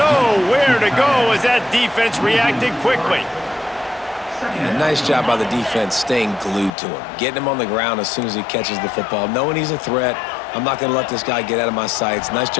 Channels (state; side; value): drops out; right; at 6.7 s